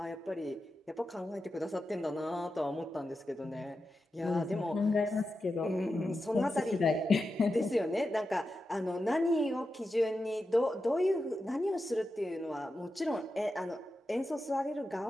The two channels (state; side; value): normal; both; correlation 0.90